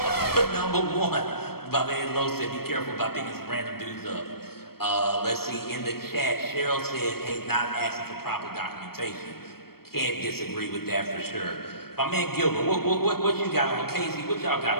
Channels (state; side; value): late; right; 0.94 ms